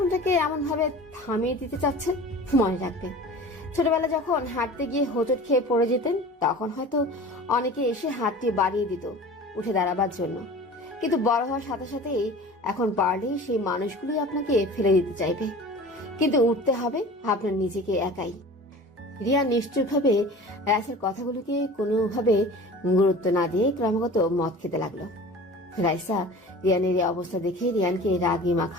এমন ভাবে থামিয়ে দিতে চাচ্ছেন? মনে রাখবেন, ছোটবেলা যখন হাঁটতে গিয়ে হোঁচট খেয়ে পড়ে যেতেন, তখন হয়তো অনেকে এসে হাতটি বাড়িয়ে দিত উঠে দাঁড়াবার জন্য। কিন্তু বড় হওয়ার সাথে সাথেই এখন পারলেই সেই মানুষগুলোই আপনাকে ফেলে দিতে চাইবে। কিন্তু উঠতে হবে আপনার নিজেকে একাই। রিয়া নিশ্চয়ভাবে রাইসার কথাগুলোকে কোনোভাবে গুরুত্ব না দিয়ে ক্রমাগত মদ খেতে লাগলো। রাইসা রিয়ানের এই অবস্থা দেখে রিয়ানকে রাগী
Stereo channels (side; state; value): both; normal; correlation 0.40